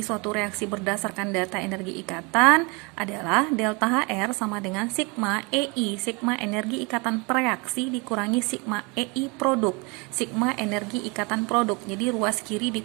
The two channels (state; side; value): quieter; left; 29.0 dB